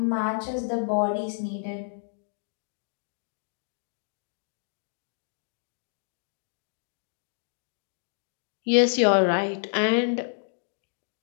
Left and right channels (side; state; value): right; silent; digital silence